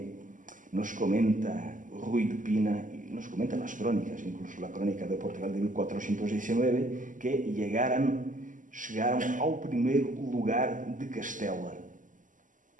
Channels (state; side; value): late; left; 0.38 ms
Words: nos comenta Ruy de Pina, y nos comentan las crónicas, incluso la crónica de Portugal de 1419, que chegaram ao primeiro lugar de Castela,